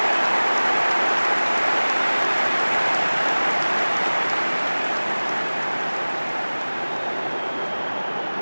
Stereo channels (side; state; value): both; inverted; correlation -1.00